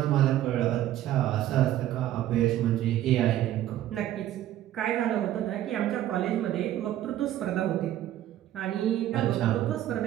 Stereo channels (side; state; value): left; quieter; 12.8 dB